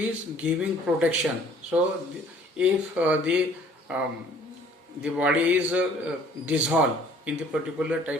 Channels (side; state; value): both; normal; correlation 0.55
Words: giving protection. So if the body is dissolved in the particular